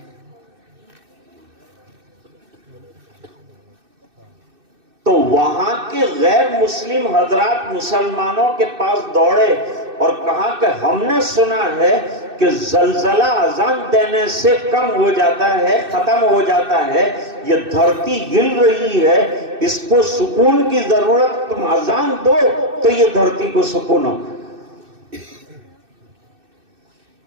تو وہاں کے غیر مسلم حضرات مسلمانوں کے پاس دوڑے اور کہا کہ ہم نے سنا ہے کہ زلزلہ اذان دینے سے کم ہو جاتا ہے، ختم ہو جاتا ہے، یہ دھرتی ہل رہی ہے، اس کو سکون کی ضرورت، تم اذان دو تو یہ دھرتی کو سکون ہو۔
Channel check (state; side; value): late; left; 2.6 ms